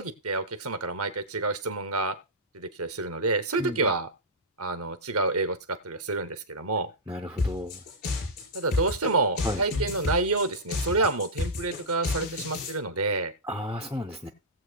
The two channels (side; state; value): both; normal; correlation -0.12